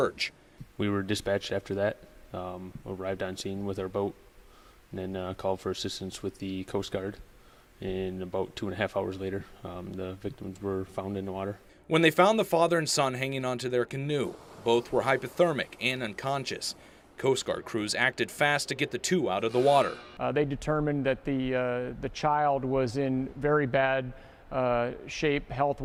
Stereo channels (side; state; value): both; identical; correlation 1.00